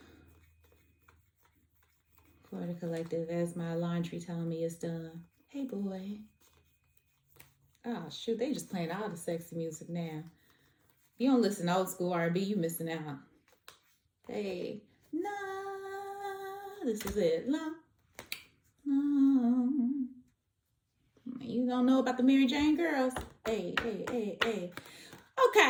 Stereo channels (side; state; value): both; identical; correlation 1.00